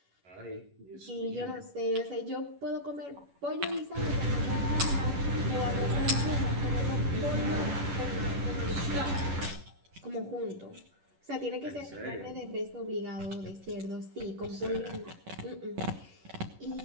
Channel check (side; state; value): left; late; 11 ms